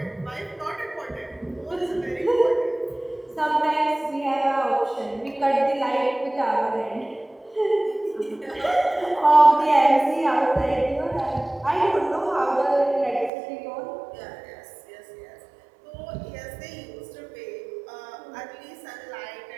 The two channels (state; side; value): drops out; left; at 13.3 s